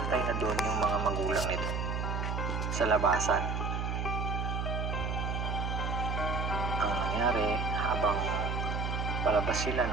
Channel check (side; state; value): right; noise; hum, 1 dB below the sound